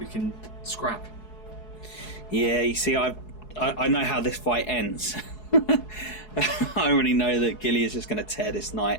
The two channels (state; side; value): late; right; 4.7 ms